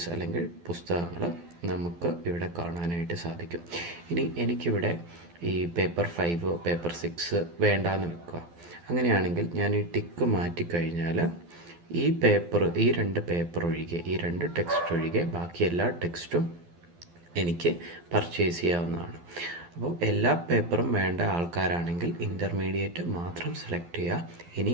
അല്ലെങ്കിൽ പുസ്തകങ്ങൾ നമുക്ക് ഇവിടെ കാണാനായിട്ട് സാധിക്കും. ഇനി എനിക്കിവിടെ ഈ പേപ്പർ 5 പേപ്പർ 6 വേണ്ടാന്ന് വെക്കുക. അങ്ങനെയാണെങ്കിൽ ഞാൻ ഈ ടിക്ക് മാറ്റിക്കഴിഞ്ഞാൽ ഈ രണ്ട് പേപ്പർ ഒഴികെ, ഈ 2 ടെക്സ്റ്റ് ഒഴികെ ബാക്കി എല്ലാ ടെക്സ്റ്റും എനിക്ക് പർച്ചേസ് ചെയ്യാവുന്നതാണ്. അപ്പോൾ എല്ലാ പേപ്പറും വേണ്ട ആൾക്കാരാണെങ്കിൽ ഇൻ്റർമീഡിയറ്റ് മാത്രം സെലക്ട് ചെയ്യുക. ഇനി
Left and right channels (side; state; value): left; late; 12 ms